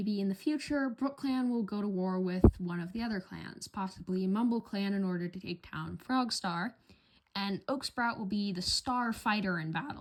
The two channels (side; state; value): both; identical; correlation 1.00